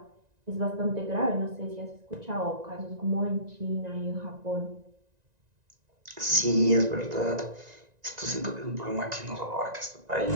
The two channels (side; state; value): left; late; 1.9 ms